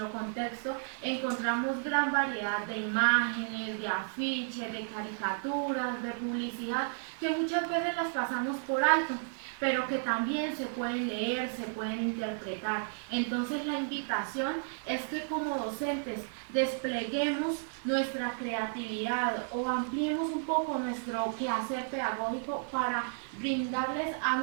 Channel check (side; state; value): left; silent; digital silence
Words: contexto, encontramos gran variedad de imágenes, de afiches, de caricaturas, de publicidad, que muchas veces las pasamos por alto, pero que también se pueden leer, se pueden interpretar. Entonces la invitación es que como docentes despleguemos nuestra creatividad o ampliemos un poco nuestro quehacer pedagógico para brindarles a